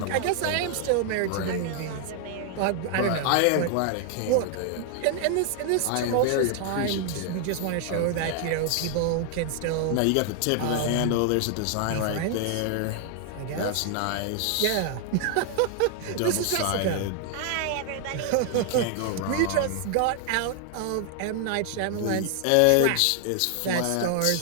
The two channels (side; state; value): both; different; correlation 0.00